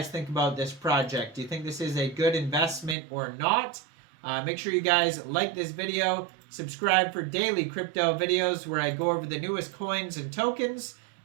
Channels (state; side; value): drops out; left; at 3.0 s